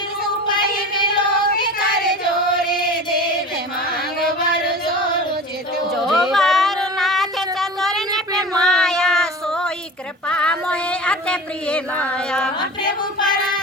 ही विलोक कर जोरे देव मांग वर जोर चितो। जो बार नाथ चतुर ने पे माया सोई कृपा मोहे अति प्रिय माया। प्रभु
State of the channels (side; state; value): both; normal; correlation 0.33